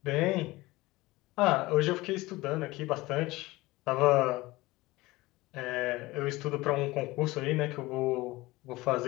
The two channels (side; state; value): right; quieter; 20.1 dB